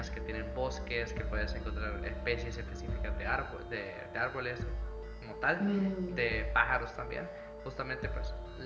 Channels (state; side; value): identical; both; correlation 1.00